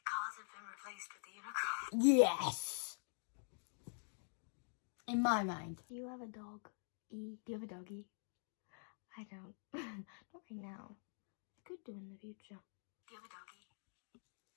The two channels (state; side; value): silent; right; digital silence